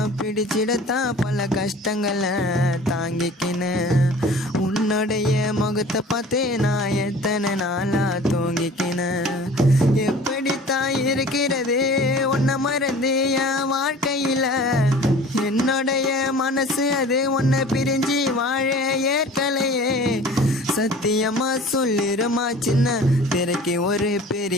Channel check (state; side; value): normal; both; correlation 0.44